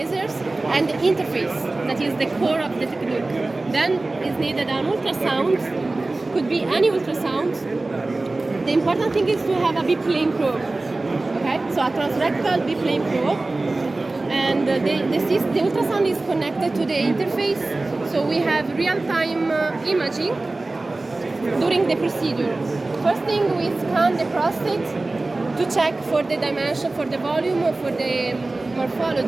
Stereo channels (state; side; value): quieter; left; 3.1 dB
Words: and the interface, that is the core of the technique. Then is needed an ultrasound, could be any ultrasound. The important thing is to have a B-plane probe, okay? So a transrectal B-plane probe. And the ultrasound is connected to the interface, so we have real-time imaging during the procedure. First thing, we scan the prostate to check for the dimension, for the volume, or for the